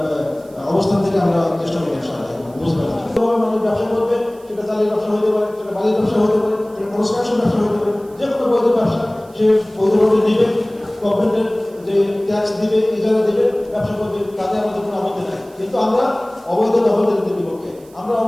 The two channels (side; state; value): right; noise; hiss, 28 dB below the sound